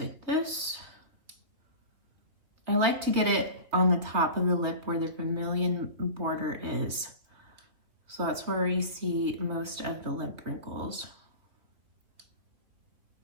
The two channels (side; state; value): left; late; 3.1 ms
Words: this. I like to get it on the top of the lip where the vermilion border is. So that's where you see most of the lip wrinkles.